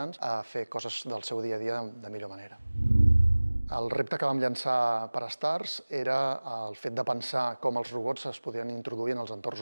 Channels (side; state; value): both; inverted; correlation -1.00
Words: a fer coses del seu dia a dia de millor manera. El repte que vam llançar per a Stars era el fet de pensar com els robots es podien introduir en els